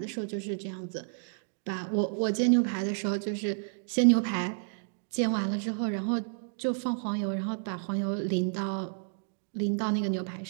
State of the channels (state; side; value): silent; left; digital silence